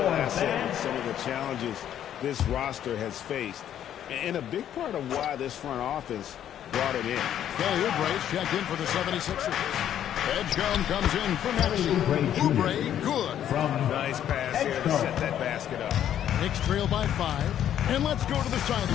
asset in some of the challenges this roster has faced. And a big part of why this front office brought it in. Kelly Oubre's checked in for the 76ers. Edgecombe comes in for Maxey. Oubre, good. Nice pass here to set that basket up. Knicks trail by 5. And let's go to the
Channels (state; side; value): quieter; right; 10.5 dB